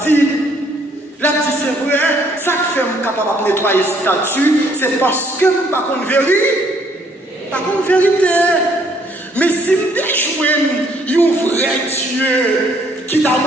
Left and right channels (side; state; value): both; normal; correlation 0.65